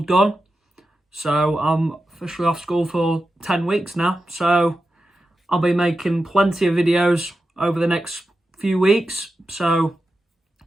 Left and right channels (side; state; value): both; normal; correlation 0.91